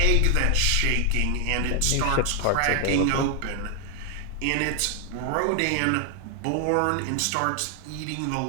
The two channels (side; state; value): both; different; correlation 0.00